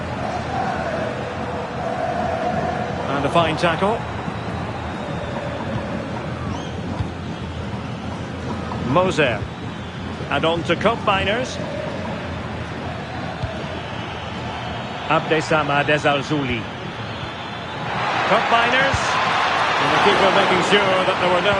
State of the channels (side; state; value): both; identical; correlation 1.00